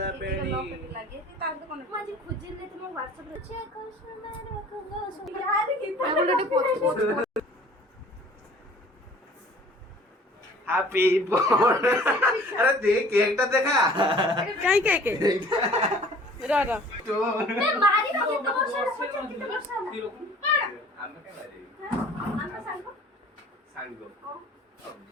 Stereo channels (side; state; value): both; normal; correlation 0.50